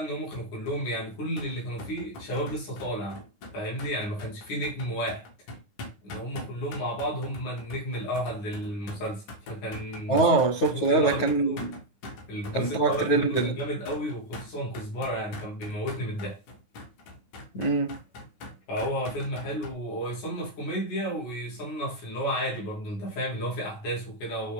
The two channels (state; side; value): late; right; 9.7 ms